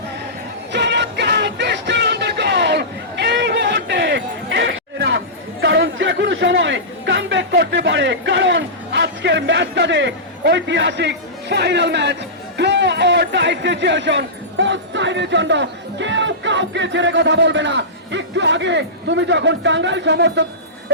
কারণ যে কোনো সময় কামব্যাক করতে পারে, কারণ আজকের ম্যাচটাতে ঐতিহাসিক final match, draw or tie situation. অফসাইডের জন্য কেউ কাউকে ছেড়ে কথা বলবে না। একটু আগে তুমি যখন টাঙ্গাইল সমর্থক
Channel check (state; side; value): normal; both; correlation -0.18